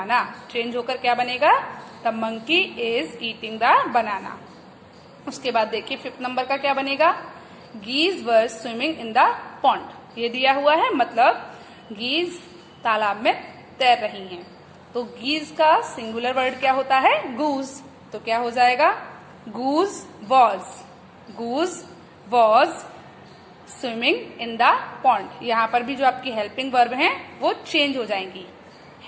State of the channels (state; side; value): identical; both; correlation 1.00